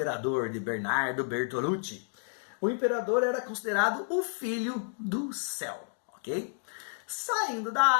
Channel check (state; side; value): silent; right; 57 dB below the other